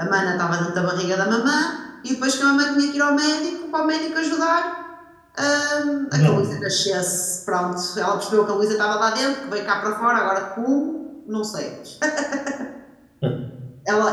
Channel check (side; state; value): both; identical; correlation 1.00